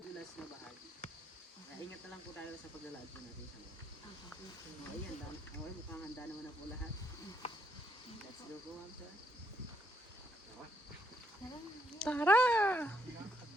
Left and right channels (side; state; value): both; normal; correlation 0.75